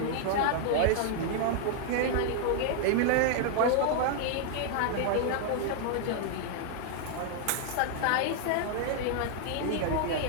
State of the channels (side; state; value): both; different; correlation -0.01